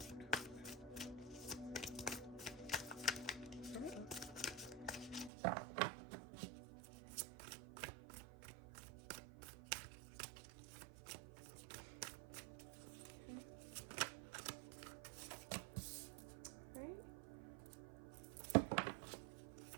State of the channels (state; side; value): drops out; left; at 5.3 s